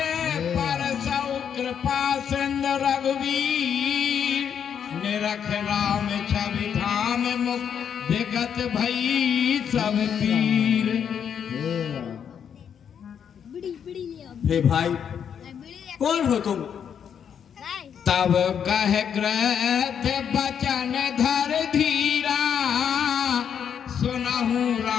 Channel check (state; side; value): quieter; right; 8.0 dB